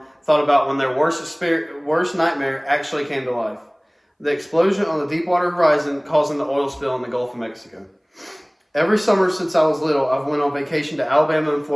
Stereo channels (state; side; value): identical; both; correlation 1.00